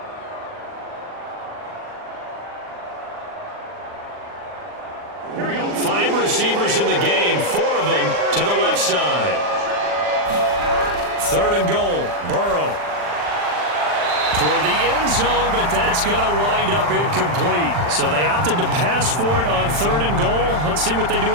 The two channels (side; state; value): left; late; 40 ms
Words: Receivers in the game, 4 of them to the left side. 3rd and goal, Burrow. Toward the end zone, but that's going to wind up incomplete. So they opted to pass for it on 3rd and goal. Let's see what they do